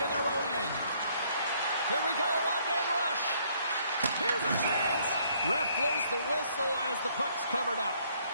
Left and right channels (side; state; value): both; inverted; correlation -0.66